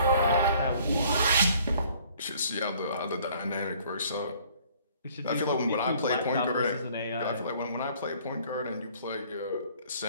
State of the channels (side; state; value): both; inverted; correlation -0.58